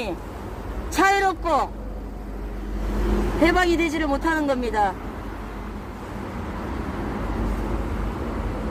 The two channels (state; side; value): identical; both; correlation 1.00